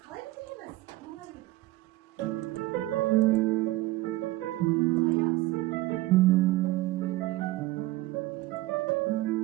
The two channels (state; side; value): quieter; left; 17.9 dB